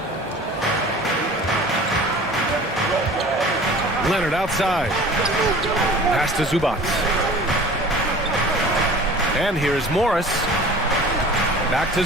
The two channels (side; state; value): both; normal; correlation 0.43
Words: Leonard outside. Pass to Zubac. And here's Morris. Back to